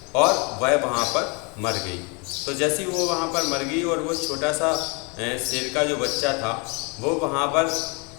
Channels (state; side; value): quieter; right; 31.8 dB